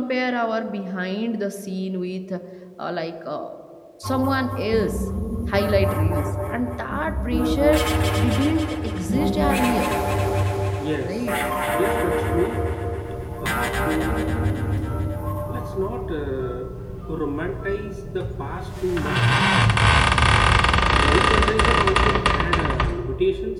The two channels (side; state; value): both; identical; correlation 1.00